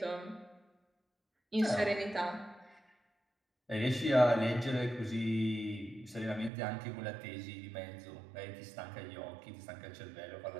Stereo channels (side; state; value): left; drops out; at 6.5 s